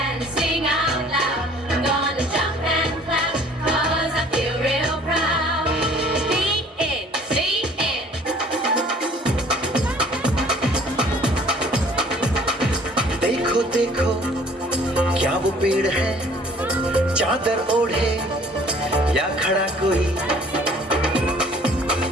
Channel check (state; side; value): normal; both; correlation 0.54